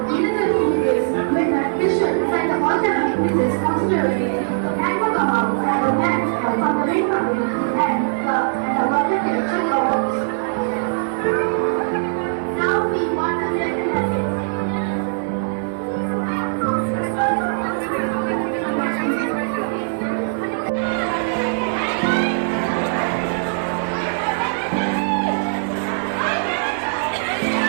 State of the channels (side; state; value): left; silent; 65 dB below the other